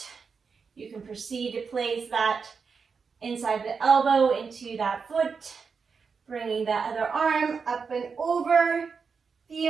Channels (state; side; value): quieter; left; 5.5 dB